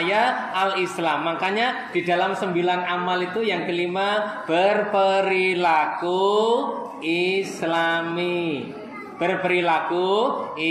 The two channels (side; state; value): both; identical; correlation 1.00